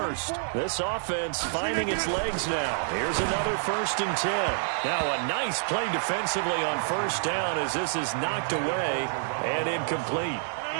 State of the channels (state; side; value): silent; left; digital silence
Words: This offense finding its legs now. Here's another 1st and 10. Now a nice play defensively on 1st down as this is knocked away and incomplete.